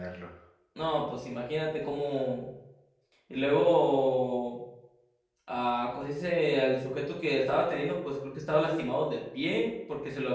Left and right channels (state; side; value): identical; both; correlation 1.00